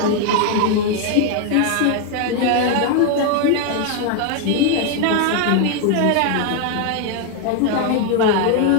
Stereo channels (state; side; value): different; both; correlation 0.01